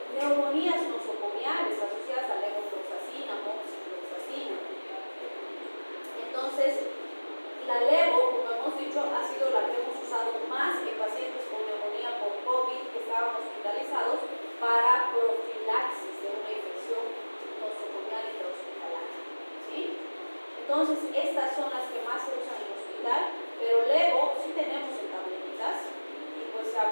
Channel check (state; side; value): inverted; both; correlation -1.00